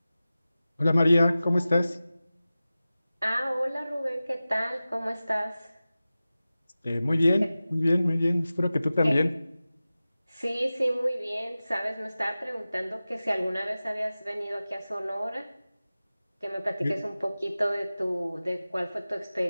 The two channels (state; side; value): inverted; both; correlation -0.96